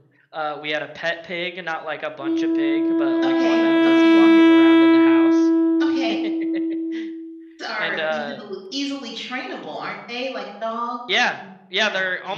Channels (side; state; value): both; identical; correlation 1.00